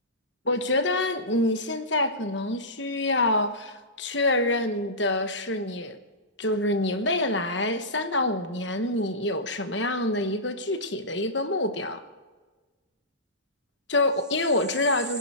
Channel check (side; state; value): both; normal; correlation -0.18